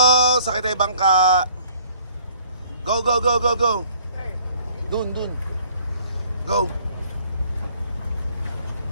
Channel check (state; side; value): inverted; both; correlation -0.57